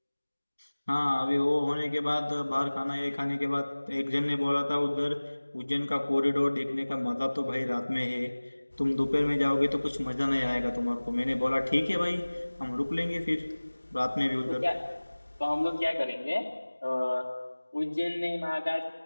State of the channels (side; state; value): both; inverted; correlation -1.00